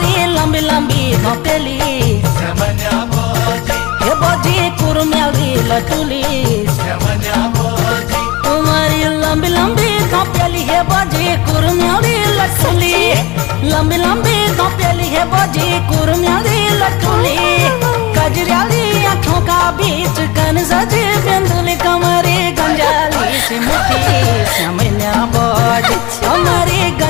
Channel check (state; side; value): quieter; right; 21.3 dB